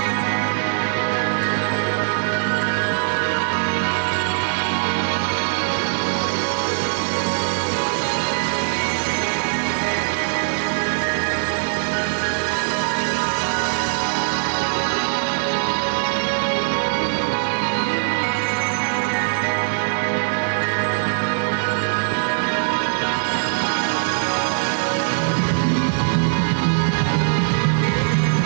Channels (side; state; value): left; silent; 65 dB below the other